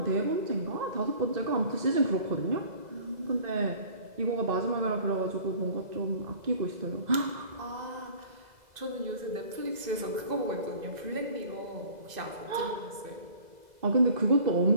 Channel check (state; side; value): late; left; 2.0 ms